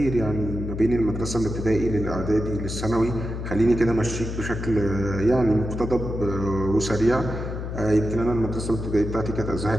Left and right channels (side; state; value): left; noise; hum, 5 dB below the sound